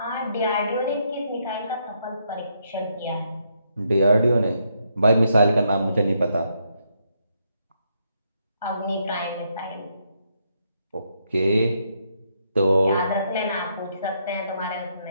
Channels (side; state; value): both; inverted; correlation -0.76